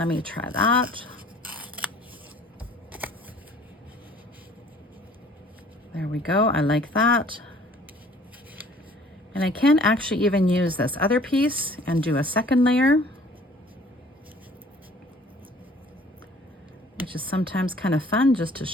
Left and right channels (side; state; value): both; normal; correlation 0.53